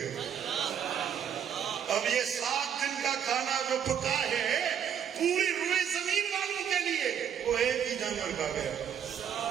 اب یہ 7 دن کا کھانا جو پکا ہے پوری روئے زمین والوں کے لیے وہ ایک ہی جانور کھا گیا۔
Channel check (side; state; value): left; quieter; 8.6 dB